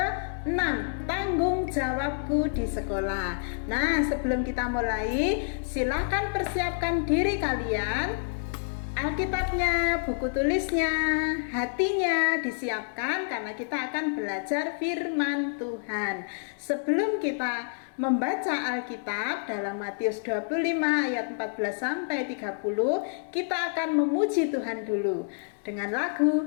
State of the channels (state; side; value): silent; right; digital silence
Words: tanggung jawabku di sekolah. Nah, sebelum kita mulai, silakan persiapkan diri kalian. Alkitabnya, buku tulisnya, hatinya disiapkan karena kita akan belajar firman Tuhan. Sebelum kita membaca Alkitab dalam Matius 25 ayat 14 sampai 30, kita akan memuji Tuhan dulu dengan lagu